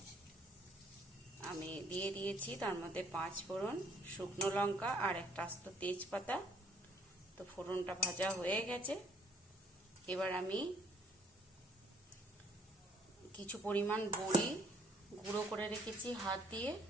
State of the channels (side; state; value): both; normal; correlation 0.62